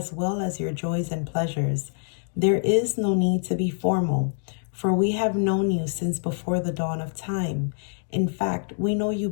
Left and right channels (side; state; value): right; silent; digital silence